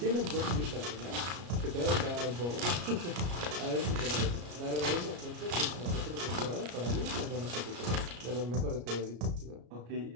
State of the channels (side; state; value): left; late; 34 ms